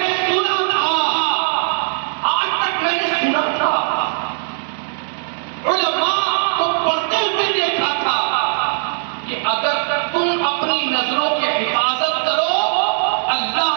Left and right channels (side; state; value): left; silent; digital silence